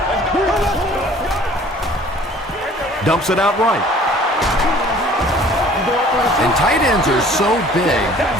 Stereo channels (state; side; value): normal; both; correlation 0.52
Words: Dumps it out right. And tight ends are so big